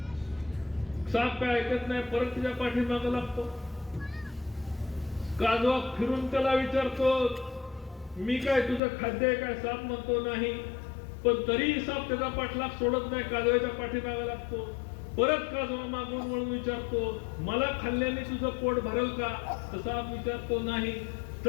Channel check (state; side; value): drops out; right; at 8.8 s